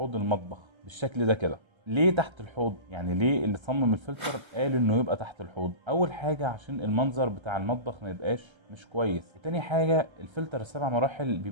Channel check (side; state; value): left; late; 1.3 ms